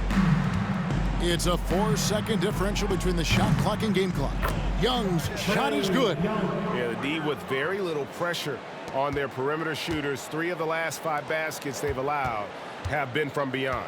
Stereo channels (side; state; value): both; identical; correlation 1.00